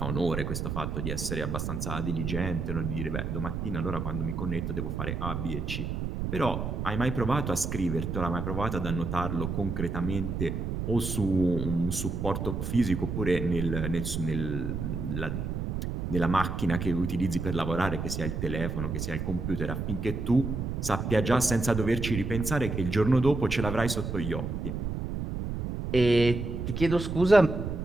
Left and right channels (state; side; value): noise; right; rumble, 3 dB below the sound